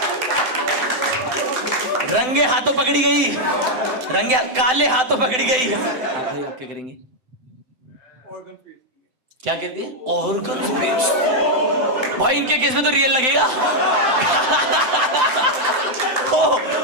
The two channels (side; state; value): left; late; 7.8 ms